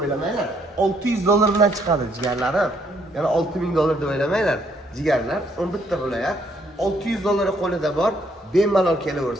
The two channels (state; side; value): normal; both; correlation 0.69